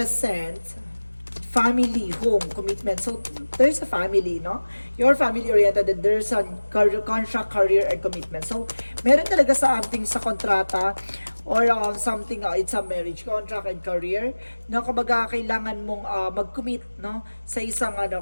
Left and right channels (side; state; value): both; inverted; correlation -1.00